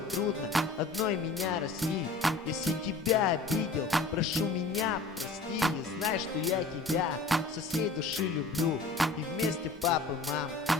одной меня растить. Если тебя обидел, прошу меня прости. И знай, что я тебя со всей души люблю. И вместе, папа, мам,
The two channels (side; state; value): right; quieter; 3.6 dB